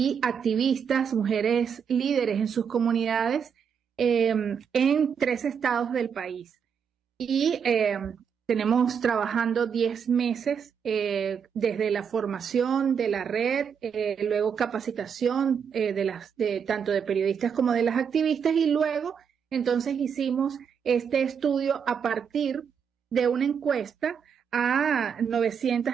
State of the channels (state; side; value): quieter; left; 7.1 dB